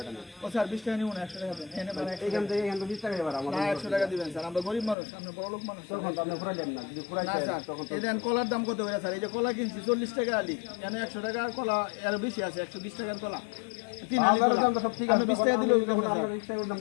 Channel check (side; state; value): right; drops out; at 5.0 s